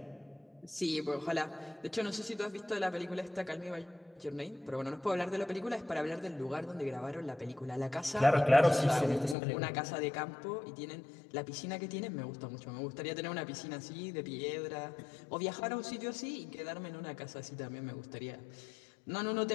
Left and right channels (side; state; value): right; drops out; at 9.3 s